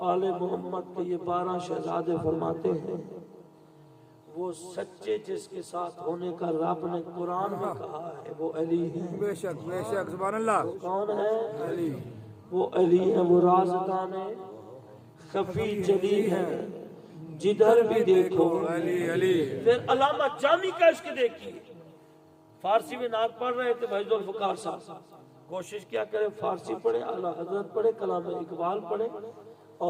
آل محمد کے یہ 12 شہزادے فرماتے ہیں وہ سچے جس کے ساتھ ہونے کا رب نے قرآن میں کہا ہے وہ علی ہے. بے شک بے شک. سبحان اللہ. کون ہے؟ علی. وہ علی ہے. وہ رازدان ہے، خفی جلی ہے، جدھر بھی دیکھو علی علی. پھر علامہ جامی کا عشق دیکھیے. فارسی میں نعت پڑھ رہے تھے بھائی ذوالفقار صاحب. کوشش کیا کریں فارسی پڑھیں، اعلیٰ حضرت پڑھیں، کلام اقبال پڑھیں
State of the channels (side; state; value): both; identical; correlation 1.00